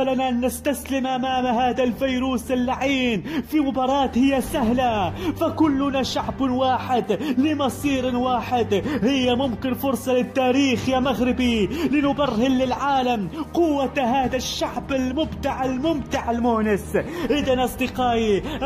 أن نستسلم أمام هذا الفيروس اللعين في مباراة هي سهلة، فكلنا شعب واحد لمصير واحد. هي ممكن فرصة للتاريخ يا مغربي لنبرهن للعالم قوة هذا الشعب المبدع الممتع المونس. إذن أصدقائي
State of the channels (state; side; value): identical; both; correlation 1.00